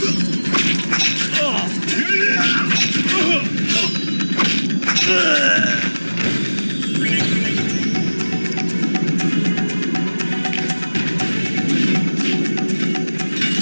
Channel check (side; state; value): both; inverted; correlation -1.00